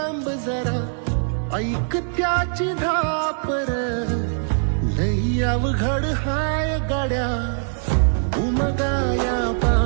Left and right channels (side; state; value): left; silent; digital silence